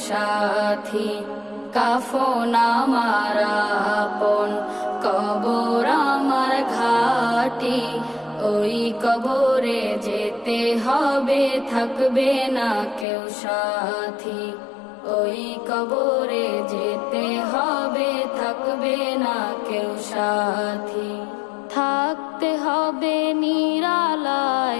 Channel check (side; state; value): right; drops out; at 13.1 s